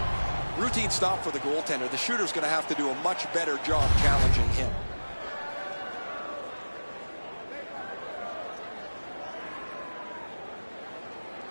Routine stop for the goaltender. The shooter's going to have to do a much better job challenging him.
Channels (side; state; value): both; inverted; correlation -1.00